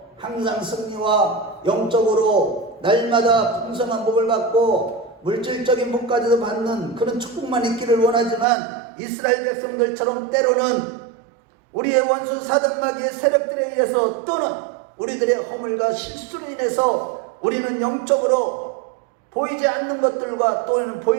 항상 승리와 영적으로 날마다 풍성한 복을 받고 물질적인 복까지도 받는 그런 축복만 있기를 원하지만 이스라엘 백성들처럼 때로는 우리의 원수 사단마귀의 세력들에 의해서 또는 우리들의 허물과 실수로 인해서 우리는 영적으로 보이지 않는 것들과 또는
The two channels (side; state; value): left; drops out; at 8.5 s